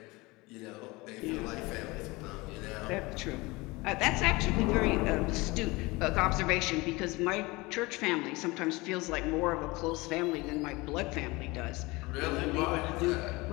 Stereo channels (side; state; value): right; quieter; 23.1 dB